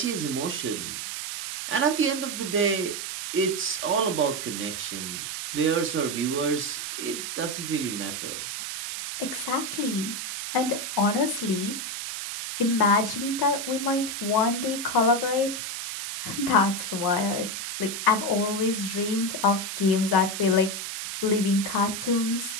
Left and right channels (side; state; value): right; noise; hiss, 5 dB below the sound